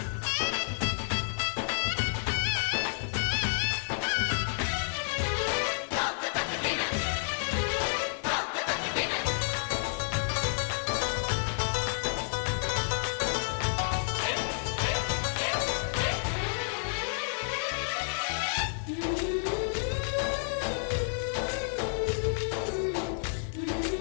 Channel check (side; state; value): right; silent; 58 dB below the other